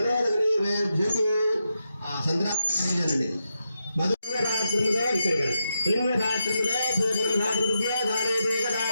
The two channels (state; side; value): inverted; both; correlation -0.86